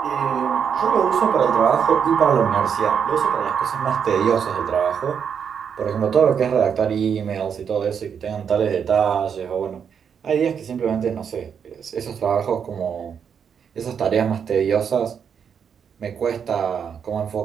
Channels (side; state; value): left; quieter; 7.3 dB